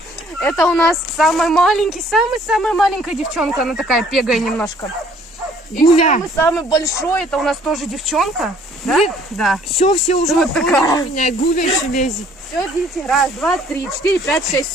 Это у нас самый маленький, самая маленькая девчонка. Она такая пегая немножко. И Гуля. самый большой, это у нас тоже девчонка. Да? Да. Все уже Вот такая. меня. Гуля еще лезет. Все, дети. Раз, два, три, четыре, пять, шесть.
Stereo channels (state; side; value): normal; both; correlation 0.59